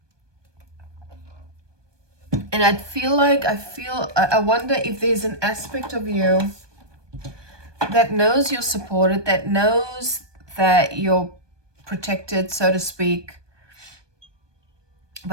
And I wonder if there's an aspect of you that knows you're supported, that knows that you're protected, so to speak.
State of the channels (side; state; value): left; late; 1.2 ms